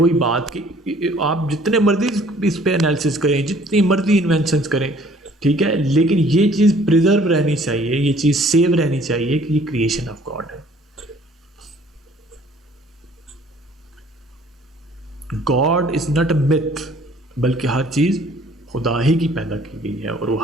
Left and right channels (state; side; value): normal; both; correlation 0.57